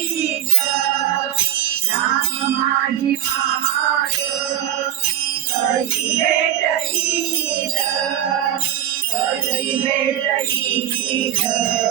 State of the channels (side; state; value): left; quieter; 11.6 dB